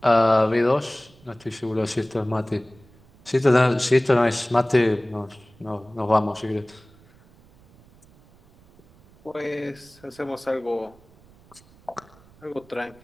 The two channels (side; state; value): right; noise; rumble, 27 dB below the sound